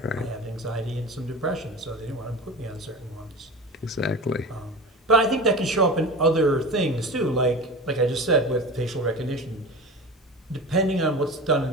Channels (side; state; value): both; normal; correlation 0.31